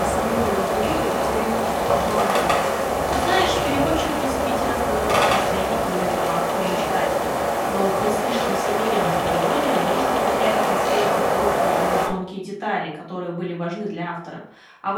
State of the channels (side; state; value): both; identical; correlation 1.00